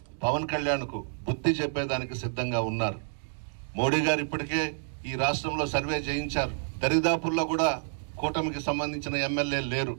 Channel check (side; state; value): left; silent; digital silence